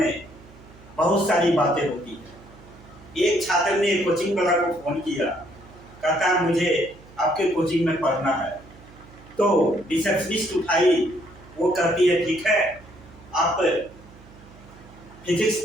बहुत सारी बातें होती हैं। एक छात्र ने कोचिंग वाला को फोन किया, कहता मुझे आपके कोचिंग में पढ़ना है। तो रिसेप्शनिस्ट उठाई, वो कहती है ठीक है, आप फिजिक्स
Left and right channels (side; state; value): right; noise; hum, 22 dB below the sound